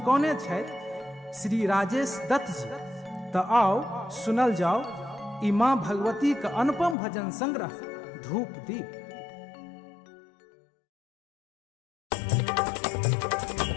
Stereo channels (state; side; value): drops out; right; at 7.0 s